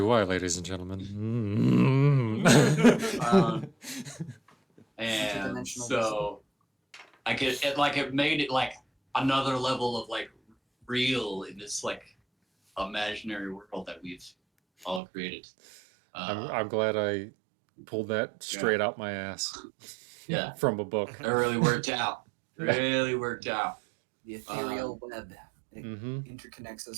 I, ladies and gentlemen? And Interdimensional so, like, it made it like another level of like real in this like imaginary world that we've all created. I'm glad I pulled that straight out my ass. Yeah. From a book. It really worked out. Really worked out. The ethereal web. It Mm-hmm. interconnects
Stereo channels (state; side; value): drops out; left; at 15.0 s